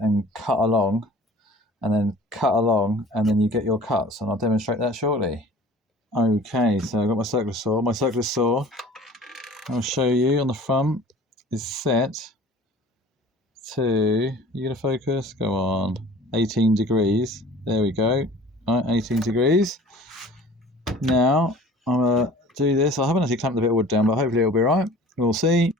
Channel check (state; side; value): normal; both; correlation 0.45